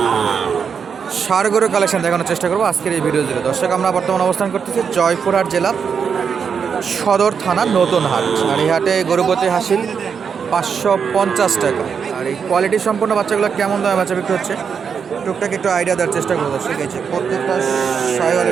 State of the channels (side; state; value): left; quieter; 6.5 dB